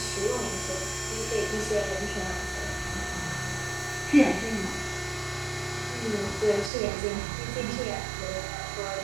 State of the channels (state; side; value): drops out; left; at 6.7 s